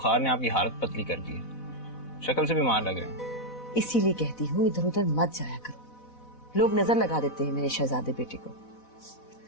ने आपकी हालत पतली कर दी है, शक्ल से बीमार लग रहे हैं। इसीलिए कहती हूँ इधर उधर मत जाया करो, लोग नजर लगा देते हैं मेरे शहजादे बेटे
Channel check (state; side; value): late; right; 4.0 ms